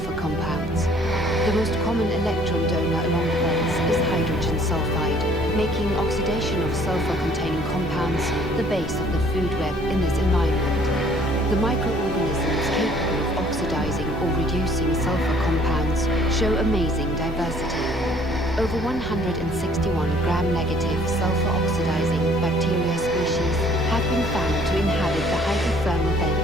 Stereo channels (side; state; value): both; normal; correlation 0.58